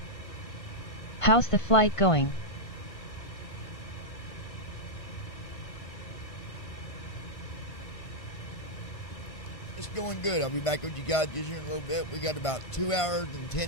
How's the flight going? It's going good. I'll be back with you guys just here in a little bit. We got about 2 hours and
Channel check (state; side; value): late; right; 1.5 ms